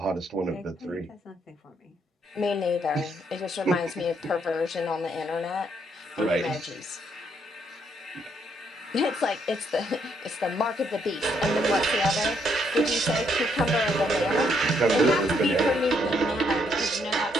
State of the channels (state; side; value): normal; both; correlation 0.73